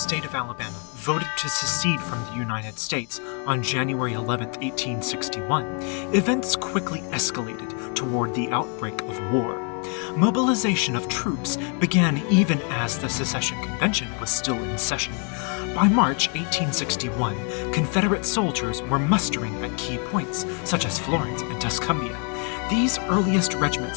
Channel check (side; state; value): right; quieter; 39.0 dB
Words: of Alabama voted to secede from the United States on January 11, 1861, events quickly escalated toward the outbreak of war. Mobilization of troops began even as the secession convention was still in session. By March 1861, Confederate soldiers were mustering at key points, such as Florence and Tuscumbia. These earliest